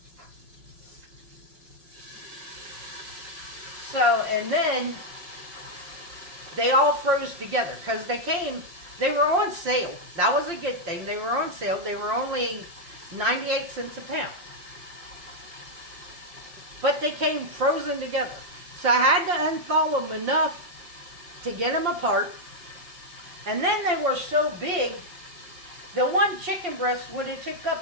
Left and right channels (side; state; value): left; late; 5.7 ms